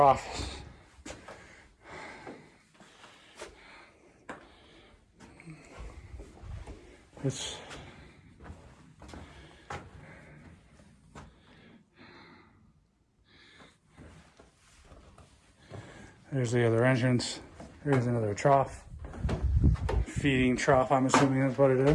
There's the other entrance. Here's another trough. Feeding trough, I'm assuming that's what it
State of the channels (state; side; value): identical; both; correlation 1.00